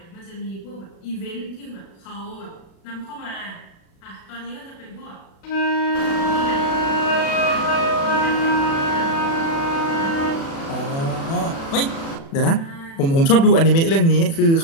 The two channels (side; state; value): right; late; 36 ms